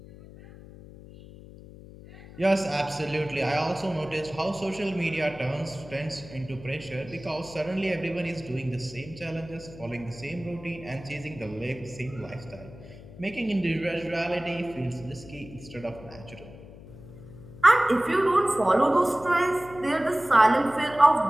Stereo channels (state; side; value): noise; left; hum, 17 dB below the sound